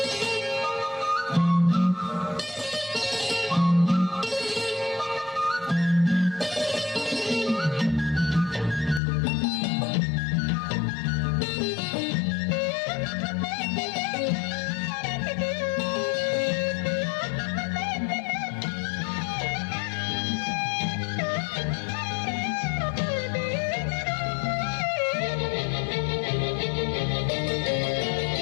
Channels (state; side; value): drops out; right; at 9.0 s